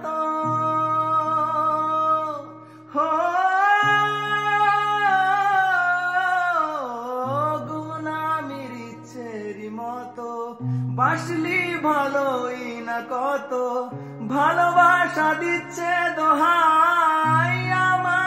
হো ঘুম নামির ইচ্ছেরই মতো বাসলি ভালোই না কত, ভালোবাসা দিচ্ছে দোহাই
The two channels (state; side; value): identical; both; correlation 1.00